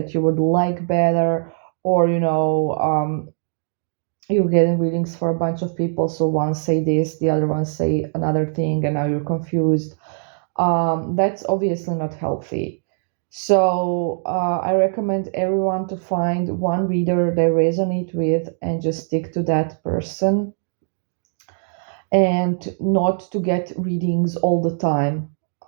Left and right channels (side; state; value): left; silent; digital silence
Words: you would like better, or you're getting readings for a bunch of people, so one say this, the other one say another thing, and now you're confused, that's obviously not healthy. So I recommend everyone to find one reader they resonate with and just stick to that person, and not to get readings all the time